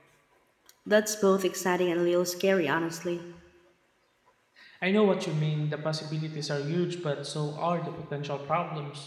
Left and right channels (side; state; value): both; identical; correlation 1.00